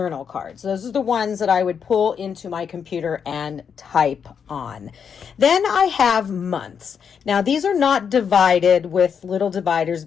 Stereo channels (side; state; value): right; quieter; 7.0 dB